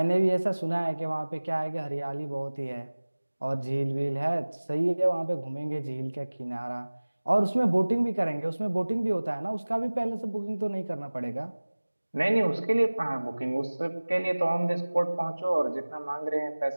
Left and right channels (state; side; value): inverted; both; correlation -1.00